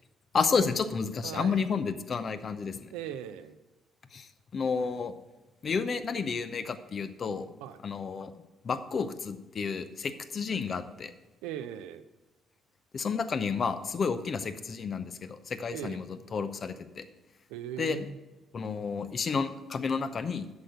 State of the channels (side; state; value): right; quieter; 4.6 dB